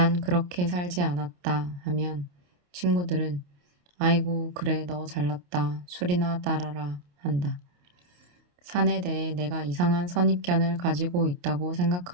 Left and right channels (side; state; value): left; late; 28 ms